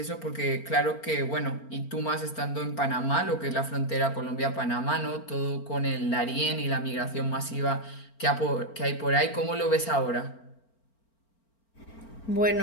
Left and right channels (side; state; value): right; late; 4.4 ms